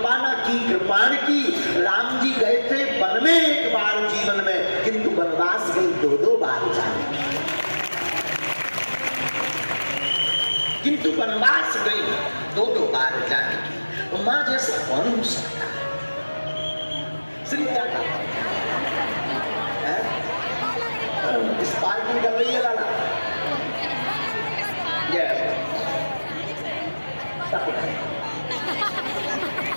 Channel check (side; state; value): both; inverted; correlation -1.00